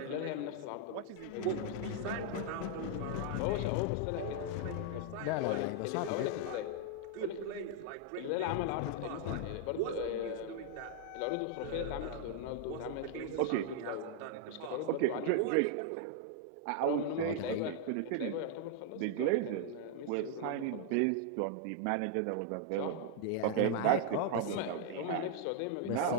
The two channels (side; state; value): both; different; correlation 0.00